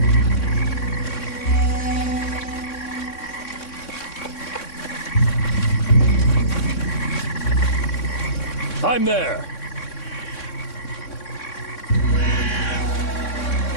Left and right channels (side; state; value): right; late; 3.6 ms